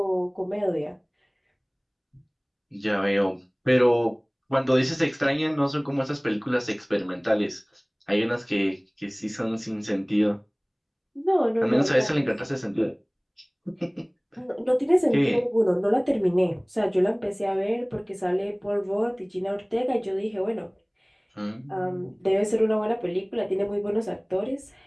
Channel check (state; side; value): identical; both; correlation 1.00